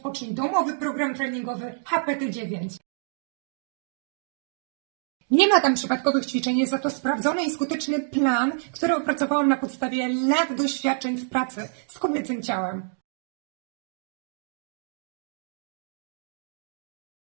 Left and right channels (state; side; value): silent; left; digital silence